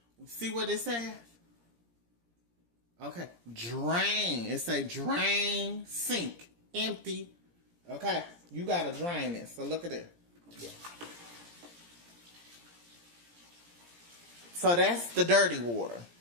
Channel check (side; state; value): left; late; 17 ms